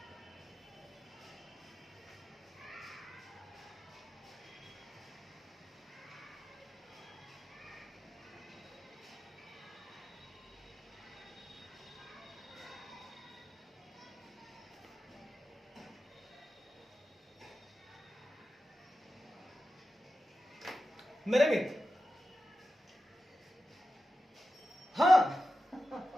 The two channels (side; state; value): both; normal; correlation 0.92